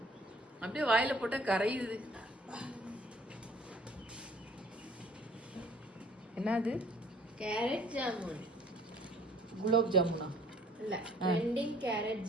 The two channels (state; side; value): normal; both; correlation 0.55